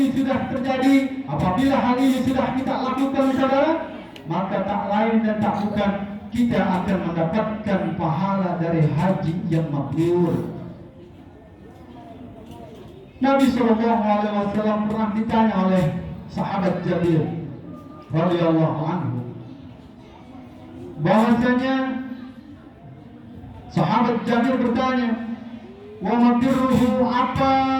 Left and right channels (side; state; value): both; identical; correlation 1.00